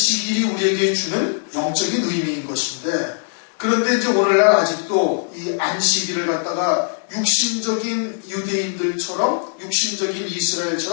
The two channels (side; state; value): right; silent; 65 dB below the other